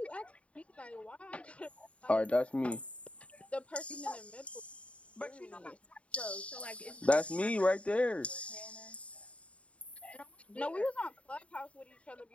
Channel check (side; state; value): right; late; 0.063 ms